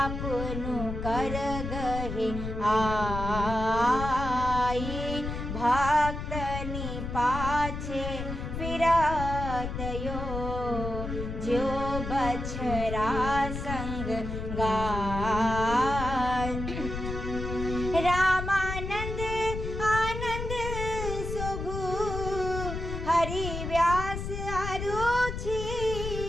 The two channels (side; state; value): left; noise; rumble, 5 dB below the sound